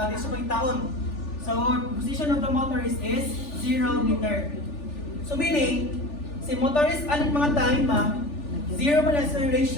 pangitaon. So, position of the motorist is 0 meter. So, meaning, si motorist, aling mga time 0 man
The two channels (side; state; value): right; late; 3.4 ms